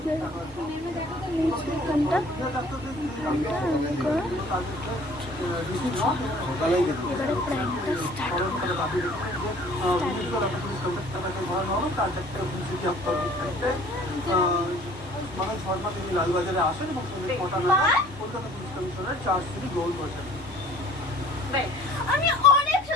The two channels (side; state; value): both; normal; correlation 0.52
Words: যায় এখানটা আমি করে এবারে প্ল্যানটা স্টার্ট মনোজ শর্মা তিনি লালবাজারে আসেন এবং কলকাতা পুলিশ কমিশনার চার্জশিট গ্রহণ করেছেন। আমি অনেক